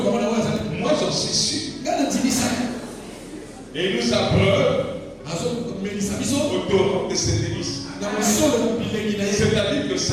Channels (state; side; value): identical; both; correlation 1.00